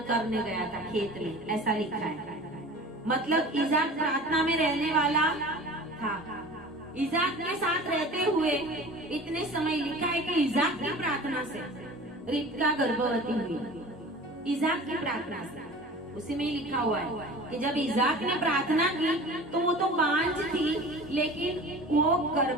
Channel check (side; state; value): both; normal; correlation 0.40